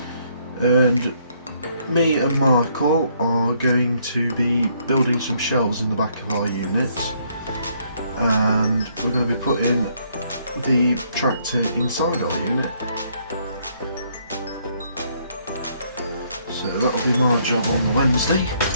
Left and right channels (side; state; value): both; inverted; correlation -0.69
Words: and me and Michael are going to be building some shelves in the back of our unit, and we're going to be putting the tractor inside our unit. So that'll be my job on the Wednesday.